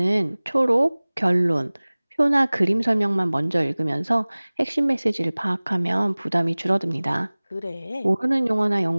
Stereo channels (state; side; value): inverted; both; correlation -1.00